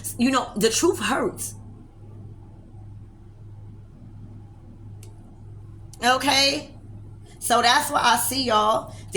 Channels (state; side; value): identical; both; correlation 1.00